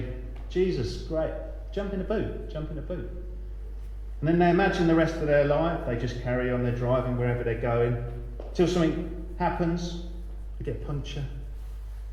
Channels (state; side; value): identical; both; correlation 1.00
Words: Jesus, great, jump in the boot. And then they imagine the rest of their life, they just carry on their driving wherever they're going, till something happens, they get a puncture,